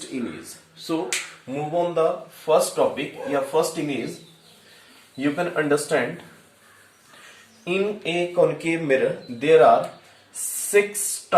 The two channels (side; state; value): both; identical; correlation 1.00